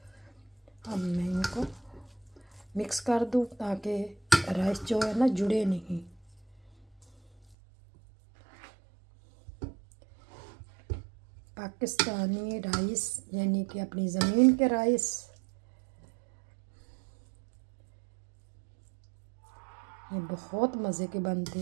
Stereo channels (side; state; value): left; drops out; at 7.6 s